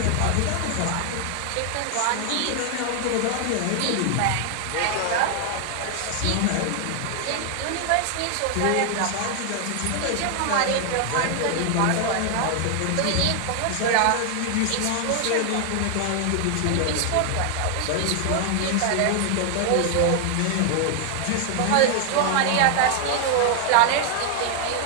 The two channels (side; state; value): both; different; correlation 0.00